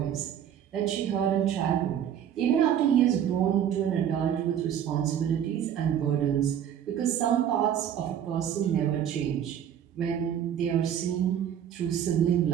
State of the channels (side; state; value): left; quieter; 9.6 dB